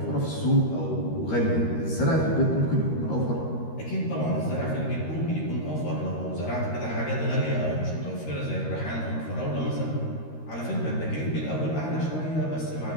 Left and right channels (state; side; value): late; right; 13 ms